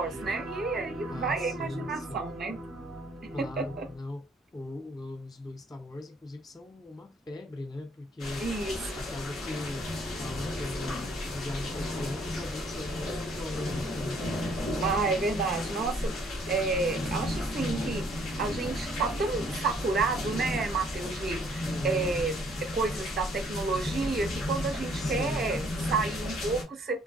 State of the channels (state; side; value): normal; both; correlation 0.63